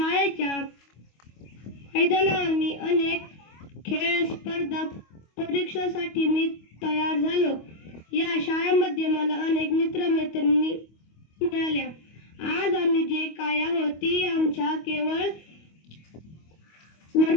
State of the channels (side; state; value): right; late; 25 ms